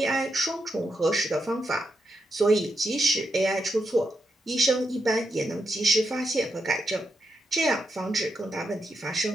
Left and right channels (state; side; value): normal; both; correlation 0.83